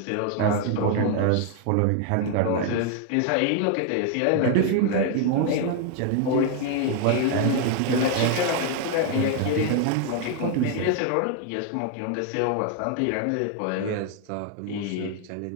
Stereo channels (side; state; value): both; different; correlation 0.00